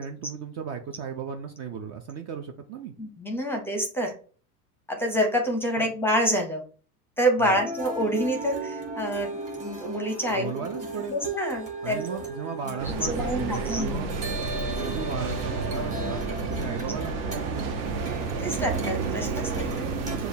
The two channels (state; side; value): normal; both; correlation 0.16